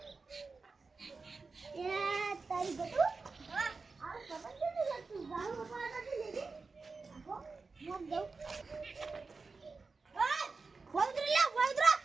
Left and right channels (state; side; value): quieter; left; 4.2 dB